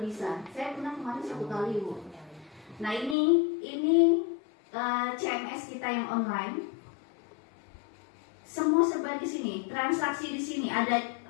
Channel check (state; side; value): drops out; right; at 3.2 s